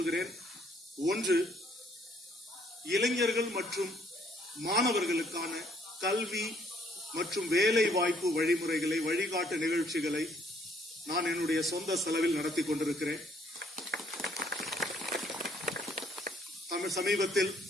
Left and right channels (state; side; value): normal; both; correlation 0.65